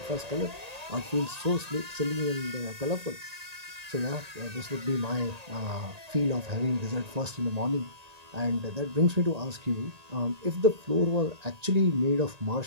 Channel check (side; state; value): left; late; 1.8 ms